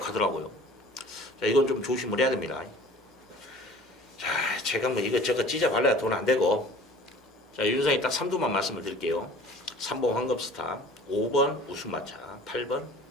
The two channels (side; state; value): both; normal; correlation 0.46